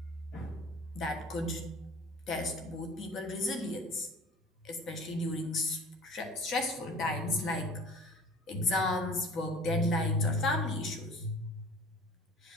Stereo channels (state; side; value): normal; both; correlation 0.44